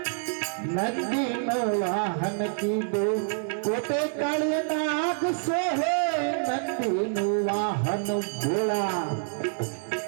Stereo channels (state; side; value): silent; left; 60 dB below the other